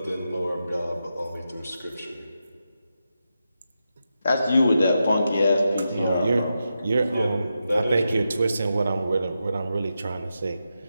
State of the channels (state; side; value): inverted; both; correlation -0.88